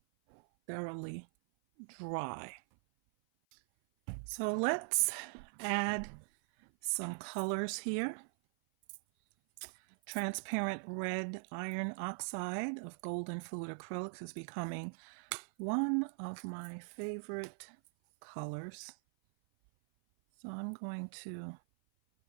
thoroughly dry. So let's add some colors here. Transparent red iron oxide of golden fluid acrylics is becoming one of my favorite colors. So I'm going to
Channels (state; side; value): silent; left; 51 dB below the other